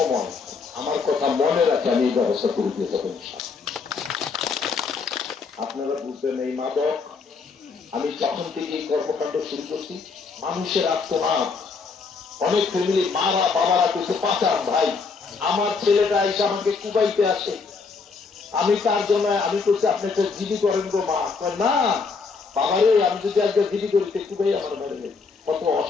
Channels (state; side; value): quieter; right; 4.9 dB